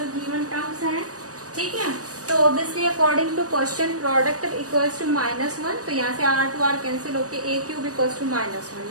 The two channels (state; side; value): late; left; 0.66 ms